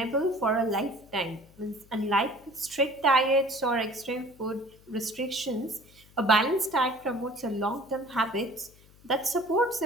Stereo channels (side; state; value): left; noise; hum, 26 dB below the sound